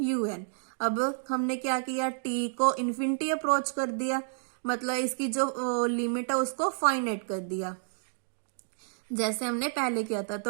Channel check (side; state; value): left; silent; digital silence